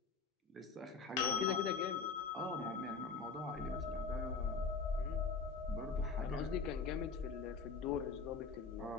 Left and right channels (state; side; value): quieter; right; 4.9 dB